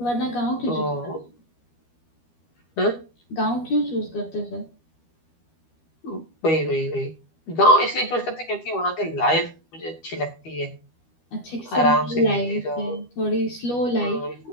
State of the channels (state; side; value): late; right; 12 ms